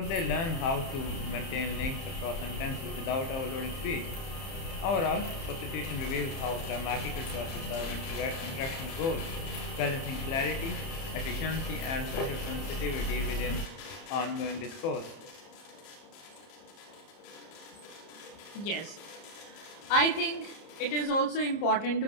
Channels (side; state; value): right; late; 30 ms